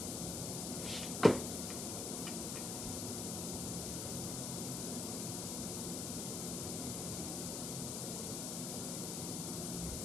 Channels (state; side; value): noise; left; hiss, 2 dB below the sound